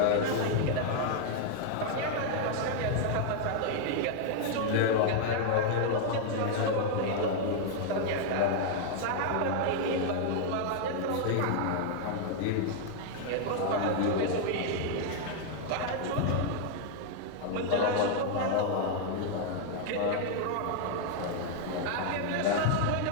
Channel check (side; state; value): both; different; correlation 0.00